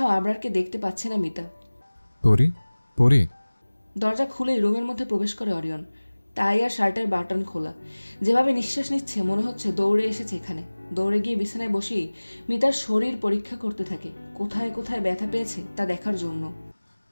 আবরারকে দেখতে পাচ্ছে না মিতা। পরি পরি দরজা খুলেই রুমের মধ্যে প্রবেশ করে অরিয়ন। টাই আর শার্টের বাটন খোলা, যেভাবে নিঃশ্বাস নিচ্ছে মনে হচ্ছে দৌড়ে এসেছে এখানে। দৌড়ে গিয়ে বিছানায় বসেই মিতার শরীর পরীক্ষা করতে থাকে, কোথায় কোথায় ব্যথা পেয়েছে তা দেখার জন্য।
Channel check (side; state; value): both; inverted; correlation -1.00